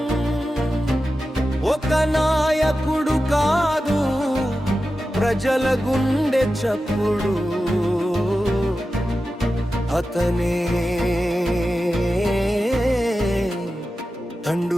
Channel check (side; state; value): both; normal; correlation 0.92